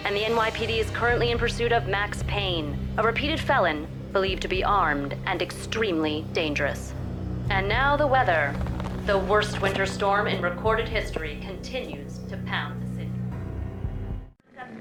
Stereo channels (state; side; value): identical; both; correlation 1.00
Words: and the NYPD is currently in pursuit of Max Payne, a repeated felon believed to be armed and extremely dangerous. And now the weather. The worst winter storm in recorded history continues to pound the city.